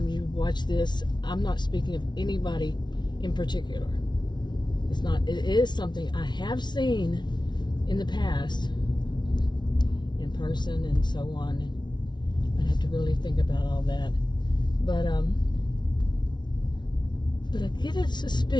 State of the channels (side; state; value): right; late; 0.21 ms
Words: you watch this, I'm not speaking of anybody in particular. It is something I have seen in the past, in person and so on. I'd have to really think about all that. But I get a